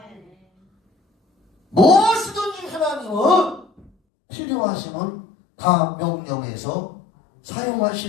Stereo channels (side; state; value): right; drops out; at 3.9 s